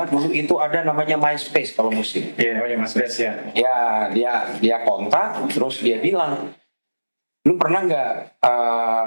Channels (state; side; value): inverted; both; correlation -1.00